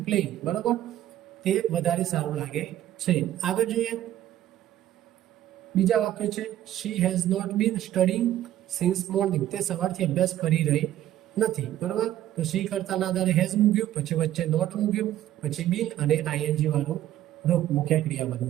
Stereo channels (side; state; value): left; quieter; 12.7 dB